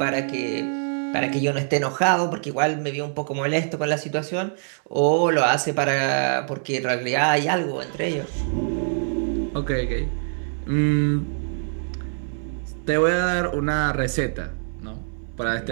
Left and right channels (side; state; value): left; silent; digital silence